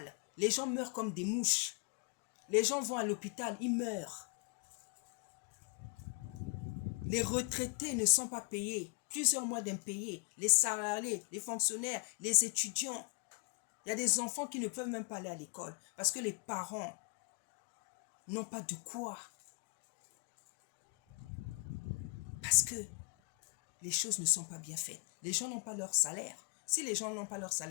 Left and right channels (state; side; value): quieter; right; 35.0 dB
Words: Les gens meurent comme des mouches. Les gens vont à l'hôpital, ils meurent. Les retraités ne sont pas payés. Plusieurs mois d'impayés. Les salariés, les fonctionnaires, les étudiants. Il y a des enfants qui ne peuvent même pas aller à l'école parce que les parents n'ont pas de quoi. Parce que les choses ne sont pas bien faites. Les gens n'ont pas leur salaire. Si les gens n'ont pas leur